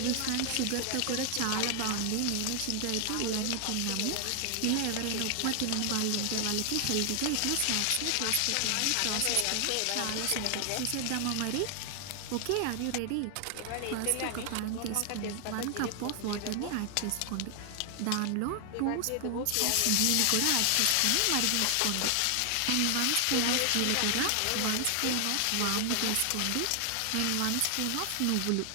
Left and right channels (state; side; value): different; both; correlation 0.00